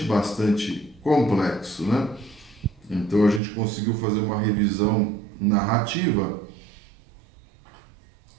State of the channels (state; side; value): drops out; left; at 3.4 s